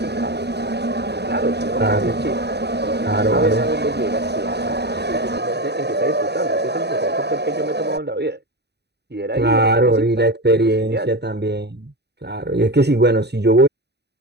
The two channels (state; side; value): late; left; 0.49 ms